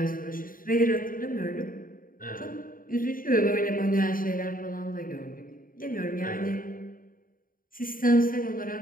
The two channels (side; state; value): right; late; 0.41 ms